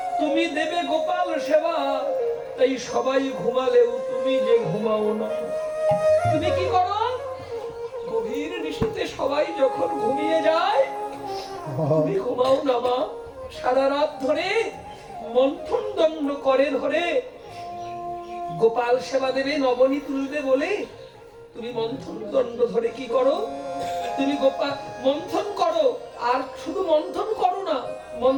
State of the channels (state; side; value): identical; both; correlation 1.00